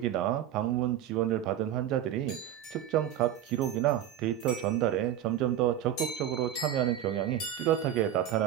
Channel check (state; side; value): quieter; left; 11.0 dB